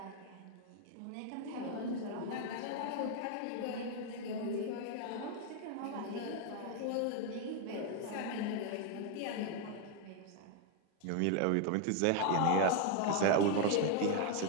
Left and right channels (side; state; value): both; different; correlation 0.01